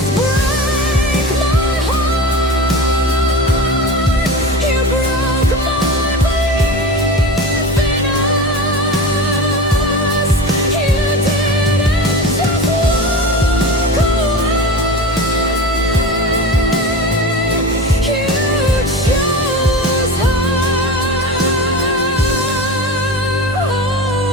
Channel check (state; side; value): normal; both; correlation 0.30